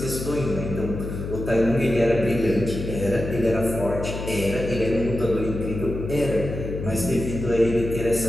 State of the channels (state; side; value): noise; left; hum, 6 dB below the sound